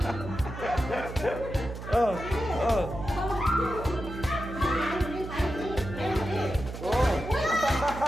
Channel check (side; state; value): right; noise; hum, 9 dB below the sound